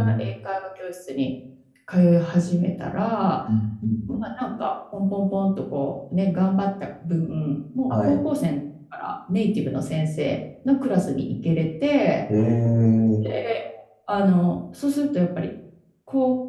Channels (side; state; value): both; identical; correlation 1.00